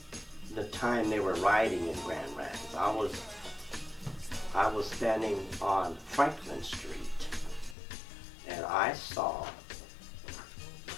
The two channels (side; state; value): right; drops out; at 7.8 s